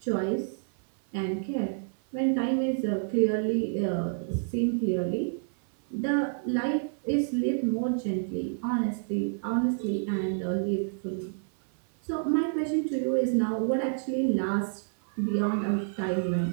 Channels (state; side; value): silent; left; 59 dB below the other